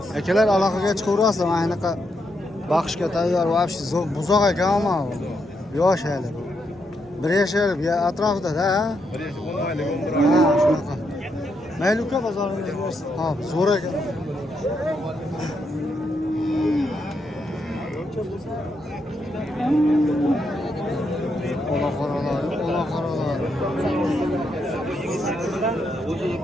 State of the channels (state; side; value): normal; both; correlation 0.80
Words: akalar aloqaga chiqaverasizlar. Mana anaqa baxshga tayyor вообще buzoq ekan ama yosh hali. Bir yashar atrofida-da. 10 oylik umr. Ha, shunaqa. Mayli uka bozoringiz bersin. Ha, zo'r ekan. Ola qaralar.